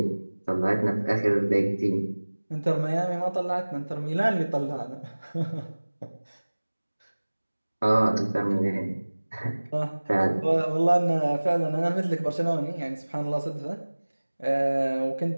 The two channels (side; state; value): both; inverted; correlation -1.00